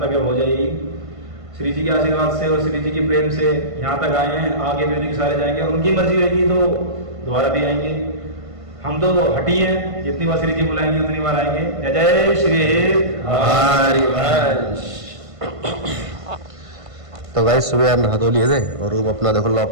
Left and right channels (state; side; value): late; left; 1.5 ms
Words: तक हो जाएगी। श्री जी के आशीर्वाद से और श्री जी के प्रेम से यहाँ तक आए हैं, आगे भी उनके सारे जाएंगे और उनकी मर्जी रहेगी तो दोबारा भी आएंगे। हम तो हटी हैं, जितनी बार श्री जी बुलाएंगे उतनी बार आएंगे। जय जय श्री हरिवंश। तो गाइस सुबह यार नहा धो लिए थे और रूम अपना देखो